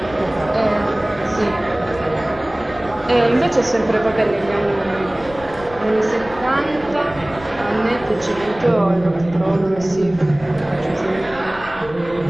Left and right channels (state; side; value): noise; left; rumble, 18 dB below the sound